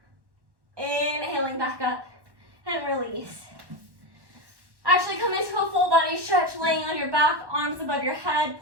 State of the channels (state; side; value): late; left; 1.1 ms